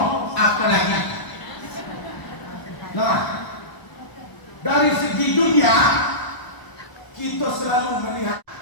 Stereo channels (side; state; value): right; late; 1.0 ms